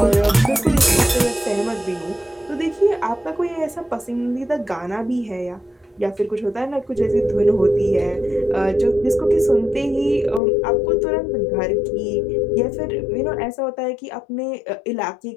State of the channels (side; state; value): right; drops out; at 10.4 s